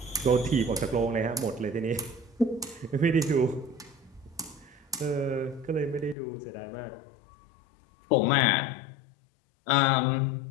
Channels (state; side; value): drops out; right; at 6.2 s